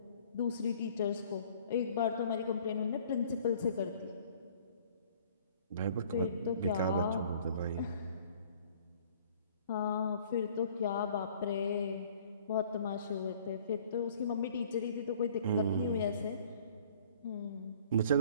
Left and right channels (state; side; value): inverted; both; correlation -0.54